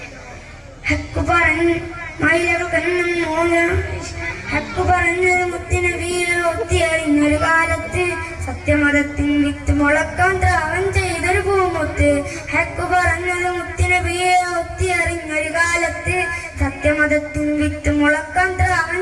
ഹക്ക് പറഞ്ഞ് മയിലകന്നും ഹക്ക് പറഞ്ഞത് മുത്തുനബിയെ ഒത്തിയറിഞ്ഞൊരു കാലത്ത് സത്യമതത്തിൻ വിത്ത് മുളക്കാൻ ത്യാഗം ചെയ്തൊരു പൂമുത്ത്. ഹക്ക് പറഞ്ഞത് മുത്തുനബിയെ ഒത്തിയറിഞ്ഞൊരു കാലത്ത് സത്യമതത്തിൻ വിത്ത് മുളക്കാൻ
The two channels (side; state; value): both; identical; correlation 1.00